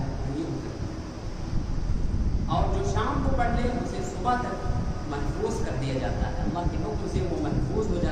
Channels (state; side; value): identical; both; correlation 1.00